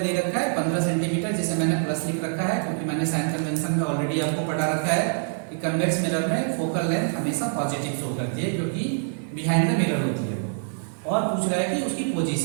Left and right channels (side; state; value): left; silent; digital silence